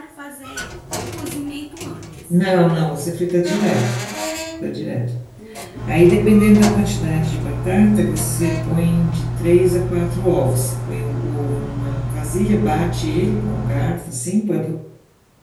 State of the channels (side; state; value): both; identical; correlation 1.00